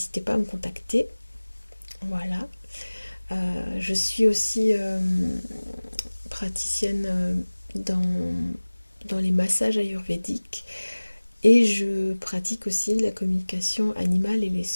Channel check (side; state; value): both; inverted; correlation -1.00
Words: pas à me contacter. Voilà. Je suis aussi praticienne dans les massages ayurvédiques et je pratique aussi la communication animale et les